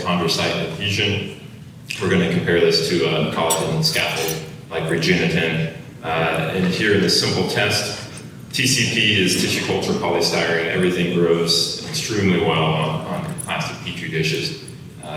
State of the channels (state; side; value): identical; both; correlation 1.00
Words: adhesion, we're going to compare this to a collagen scaffold like Regeniten. And here in this simple test, TCP is tissue culture polystyrene. Everything grows extremely well on plastic petri dishes.